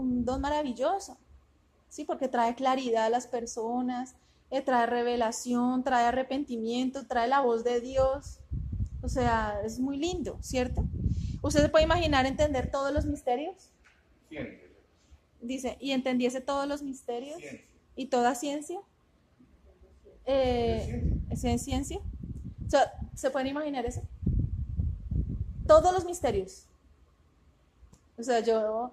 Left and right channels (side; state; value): both; identical; correlation 1.00